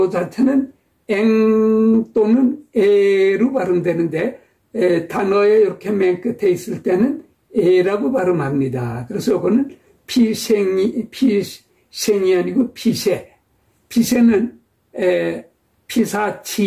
자체는 eng 또는 에로 발음되는데, 단어에 이렇게 맨 끝에 있을 때는 에라고 발음합니다. 그래서 요거는 피생이 아니고 피세. 피세는,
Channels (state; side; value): identical; both; correlation 1.00